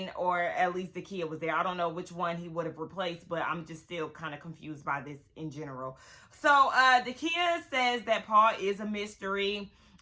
or at least Dakia, was there. I don't know which one he would have replaced, but I'm just still kind of confused by this in general. So Dakia says that Paul is a mystery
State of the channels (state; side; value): identical; both; correlation 1.00